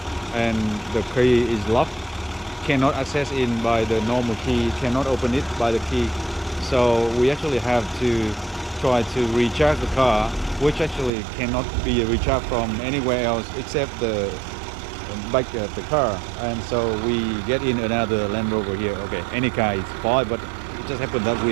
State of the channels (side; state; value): left; drops out; at 11.1 s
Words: and the key is locked, cannot access in by the normal key, cannot open it by the key. So we actually have to try to recharge the car, which actually cannot be recharged from anywhere else except the back of the car. And so we get in another Land Rover here. Okay, any car is fine, but it just happened that